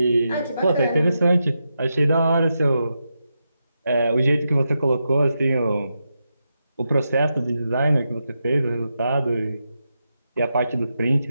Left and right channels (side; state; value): both; inverted; correlation -0.87